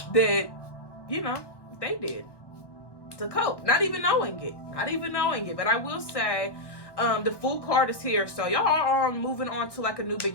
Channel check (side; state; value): right; late; 1.2 ms